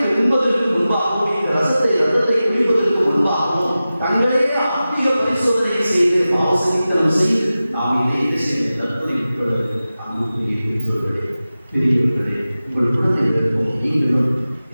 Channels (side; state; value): both; inverted; correlation -0.95